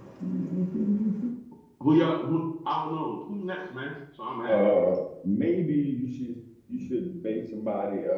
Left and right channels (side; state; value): both; identical; correlation 1.00